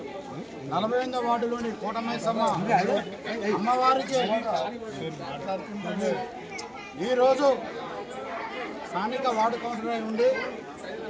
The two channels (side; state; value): both; identical; correlation 1.00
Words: 48వ వార్డులోని కోటమైసమ్మ అమ్మవారికి ఈరోజు స్థానిక వార్డు కౌన్సిలర్ ఉండి